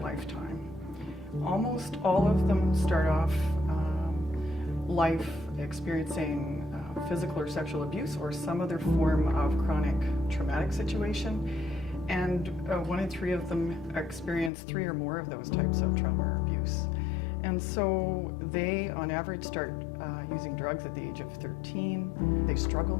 Almost all of them start off life experiencing physical or sexual abuse or some other form of chronic traumatic situation, and 1 in 3 of them experience 3 or more of those types of trauma or abuse. And so they, on average, start using drugs at the age of 13. They struggle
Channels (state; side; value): drops out; right; at 14.5 s